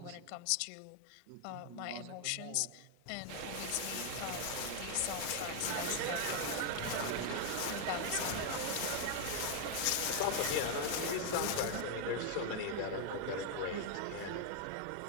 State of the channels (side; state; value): both; different; correlation 0.00